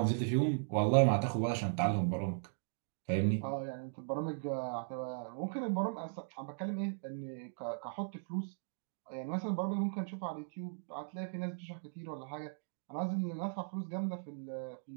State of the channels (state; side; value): silent; left; digital silence